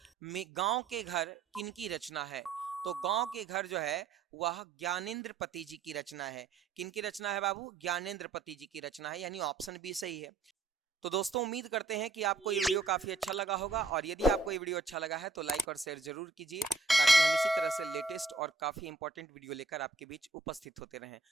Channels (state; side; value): quieter; left; 3.9 dB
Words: गांव के घर किनकी रचना है? तो गांव के घर जो है वह ज्ञानेंद्र पति जी की रचना है। किनकी रचना है बाबू? ज्ञानेंद्र पति जी की रचना है, यानी ऑप्शन बी सही है। तो दोस्तों उम्मीद करते हैं कि आपको ये वीडियो काफी अच्छा लगा होगा और यदि आपको ये वीडियो अच्छा लगा है तो लाइक और शेयर जरूर कीजिए ताकि हम इसी तरह से लेटेस्ट और काफी इंपॉर्टेंट वीडियो लेकर आपके बीच उपस्थित होते रहें।